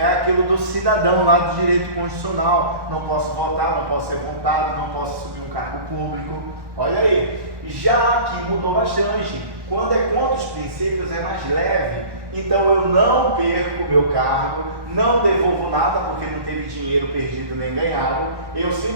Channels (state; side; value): late; left; 1.1 ms